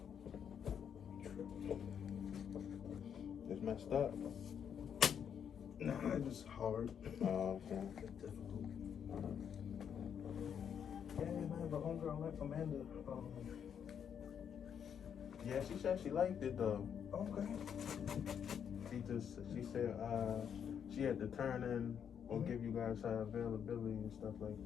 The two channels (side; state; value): right; quieter; 8.1 dB